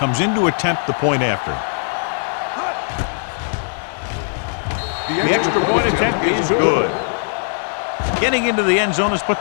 in to attempt the point after. The extra point attempt is good. Getting into the end zone has put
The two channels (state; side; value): silent; right; digital silence